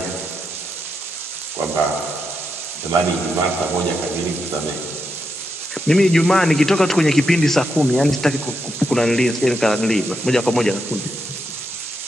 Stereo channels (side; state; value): both; normal; correlation 0.84